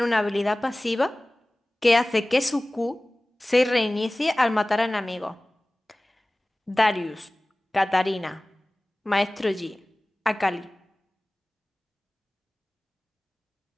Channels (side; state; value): both; normal; correlation 0.98